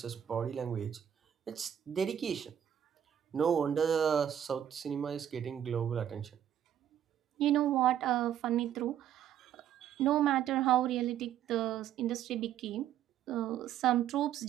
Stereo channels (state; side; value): quieter; left; 10.1 dB